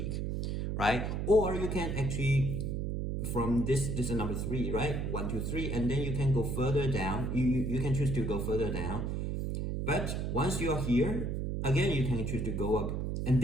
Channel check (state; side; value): noise; right; hum, 1 dB below the sound